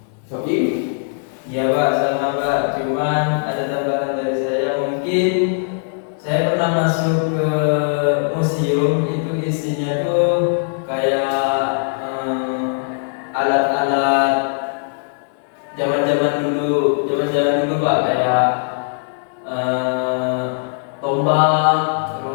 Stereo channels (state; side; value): silent; right; 61 dB below the other